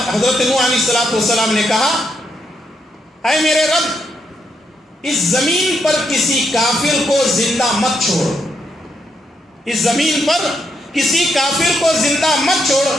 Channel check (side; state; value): both; normal; correlation 0.79